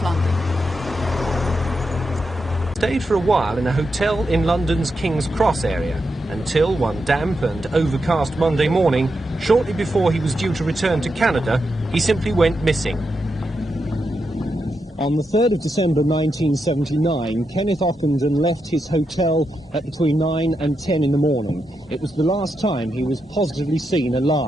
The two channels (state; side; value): normal; both; correlation 0.85